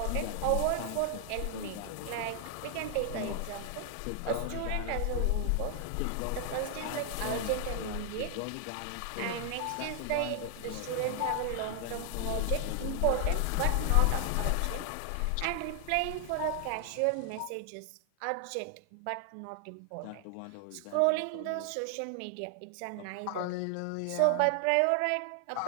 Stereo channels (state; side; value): different; both; correlation 0.00